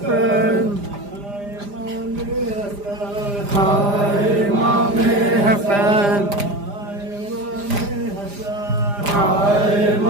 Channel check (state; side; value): late; left; 5.0 ms